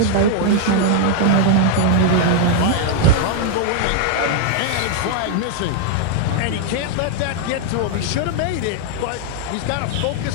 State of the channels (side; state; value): both; different; correlation 0.00